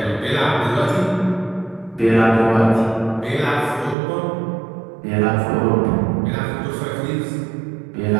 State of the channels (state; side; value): drops out; left; at 4.0 s